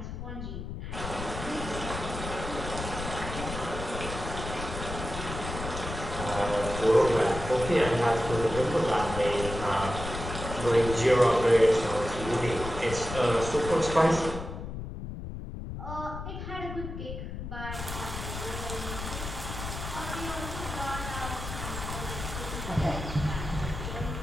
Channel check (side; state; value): left; noise; rumble, 7 dB below the sound